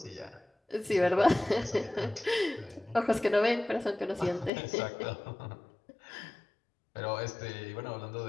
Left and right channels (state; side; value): drops out; right; at 4.5 s